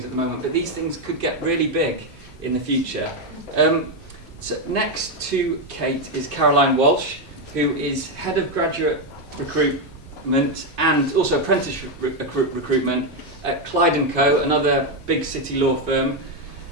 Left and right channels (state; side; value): normal; both; correlation 0.05